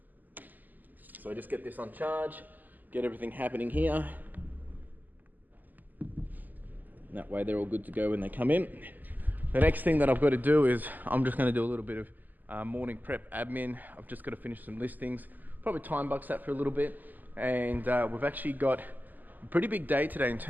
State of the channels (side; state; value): left; late; 0.085 ms